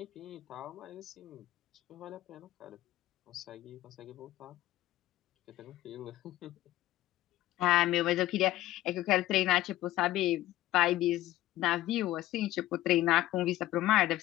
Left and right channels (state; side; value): quieter; right; 15.3 dB